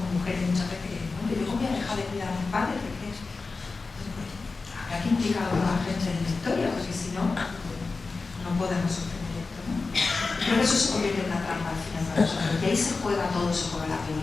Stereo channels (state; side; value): quieter; right; 4.0 dB